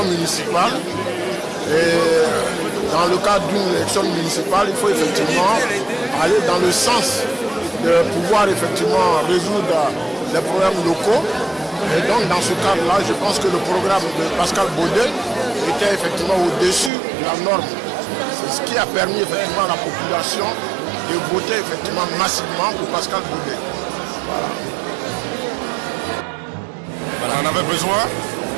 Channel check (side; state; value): left; drops out; at 16.9 s